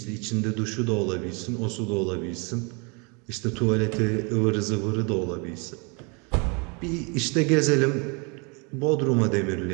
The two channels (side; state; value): left; quieter; 32.5 dB